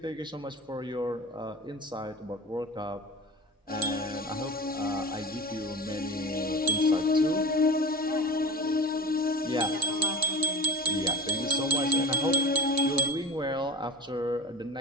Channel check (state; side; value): normal; both; correlation 0.34